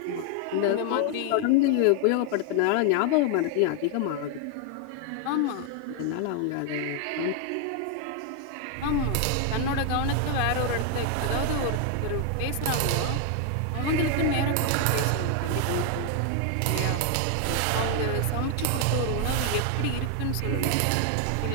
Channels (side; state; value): both; different; correlation 0.00